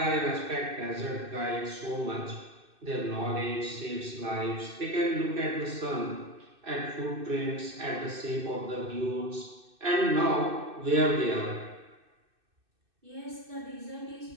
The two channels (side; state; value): left; late; 2.6 ms